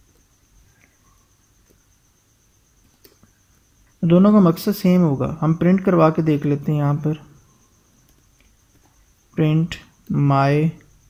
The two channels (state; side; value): identical; both; correlation 1.00